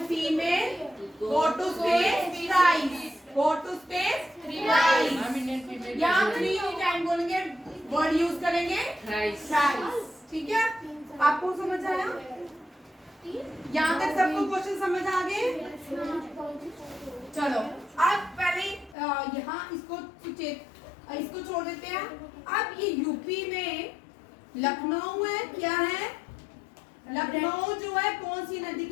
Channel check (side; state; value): right; drops out; at 18.9 s